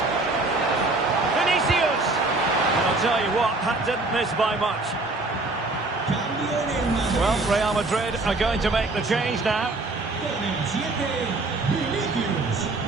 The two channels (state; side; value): quieter; left; 3.2 dB